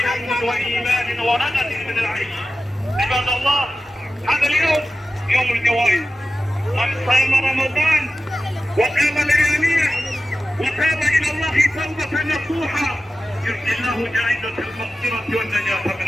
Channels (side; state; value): both; normal; correlation 0.94